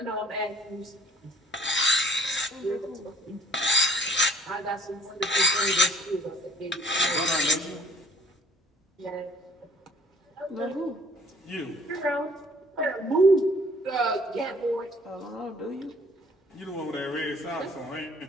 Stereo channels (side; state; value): both; normal; correlation 0.56